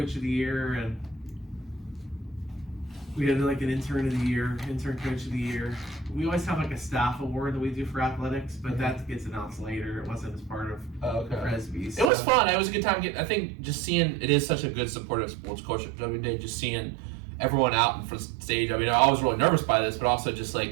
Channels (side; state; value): left; drops out; at 12.1 s